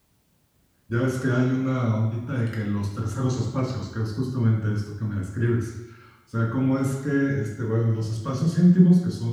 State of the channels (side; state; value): both; identical; correlation 1.00